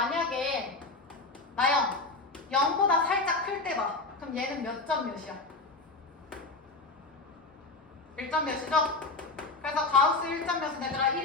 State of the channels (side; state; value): right; quieter; 3.5 dB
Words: 나영 0보다 살짝 클 때 봐. 그럼 얘는 몇 점 몇이야? 1점 몇이죠? 그래서 가우스 1점 몇은 얘들아